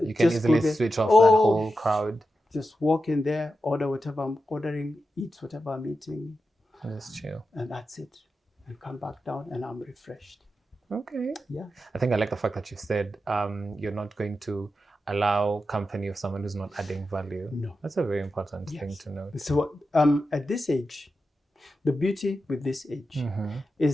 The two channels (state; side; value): normal; both; correlation 0.90